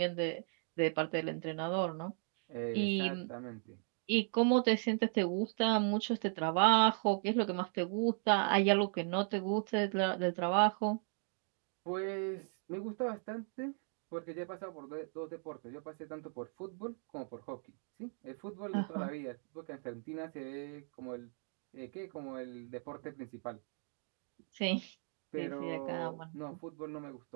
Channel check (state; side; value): silent; left; 53 dB below the other